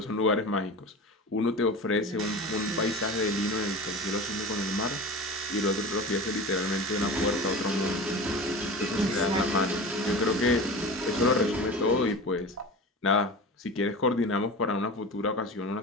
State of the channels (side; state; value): both; normal; correlation 0.32